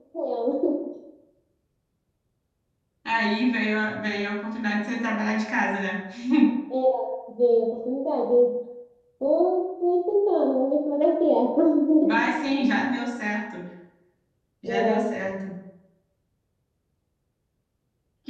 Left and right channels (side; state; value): both; identical; correlation 1.00